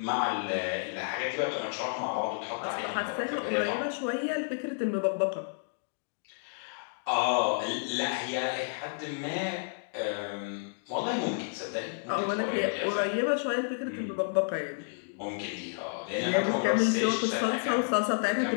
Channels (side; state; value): right; silent; digital silence